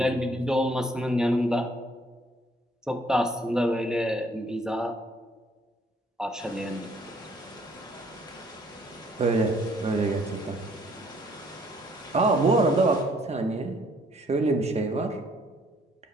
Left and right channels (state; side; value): normal; both; correlation 0.63